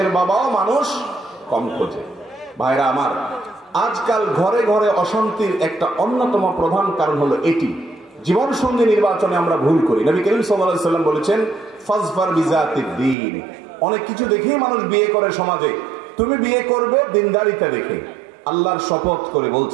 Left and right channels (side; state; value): left; drops out; at 13.2 s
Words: বাবাও মানুষ কম খোঁজে। ভাইরা আমার, আজকাল ঘরে ঘরে অশান্তির একটা অন্যতম প্রধান কারণ হলো এটি, জীবন সঙ্গী নির্বাচনে আমরা ভুল করি। নবী করিম সাল্লাল্লাহু আলাইহি ওয়াসাল্লাম বলেছেন, ফাজফার বিজাতিদ দ্বীন। অনেক কিছু দেখেই মানুষ বিয়ে করে সমাজে, তুমি বিয়ে করবে দিনদারিতা দেখে। আল্লাহর শপথ করে